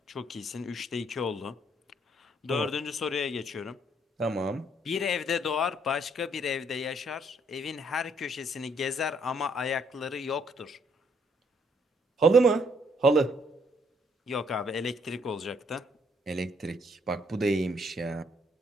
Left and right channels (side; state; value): both; normal; correlation 0.69